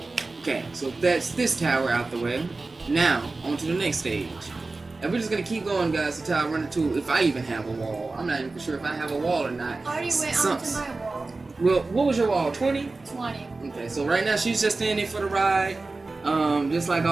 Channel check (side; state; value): left; quieter; 3.5 dB